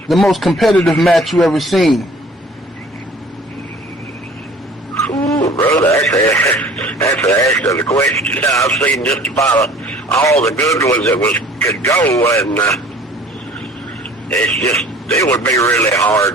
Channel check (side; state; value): both; normal; correlation 0.49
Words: most competitive match you ever seen? Ooh, brother, that's an excellent question. I've seen just about all the good ones that could go, and it would be really